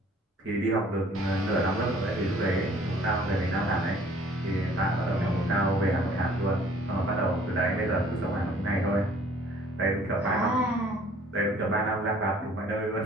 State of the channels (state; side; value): normal; both; correlation 0.55